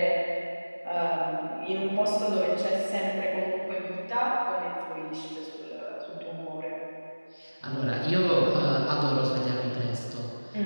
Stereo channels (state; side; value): inverted; both; correlation -1.00